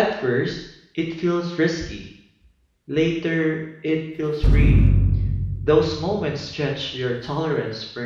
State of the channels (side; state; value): both; identical; correlation 1.00